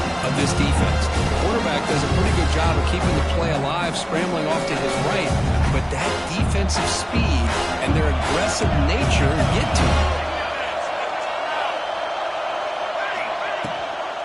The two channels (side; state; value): both; identical; correlation 1.00